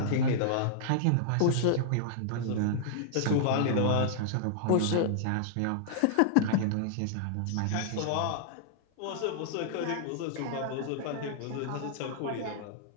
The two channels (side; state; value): both; different; correlation -0.01